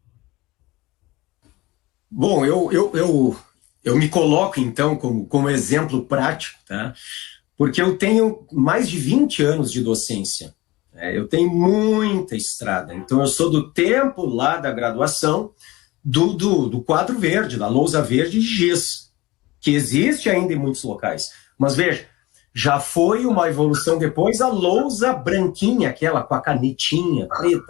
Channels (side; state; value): right; quieter; 20.0 dB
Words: Bom, eu me coloco, então, como exemplo prático, tá? Porque eu tenho mais de 20 anos de docência. Eu tenho muita estrada. Então, eu sou do tempo lá da graduação do quadro verde, da lousa verde de giz, que existe ainda em muitos locais. Mas, veja, já foi uma evolução depois a lousa branquinha, aquela com a canetinha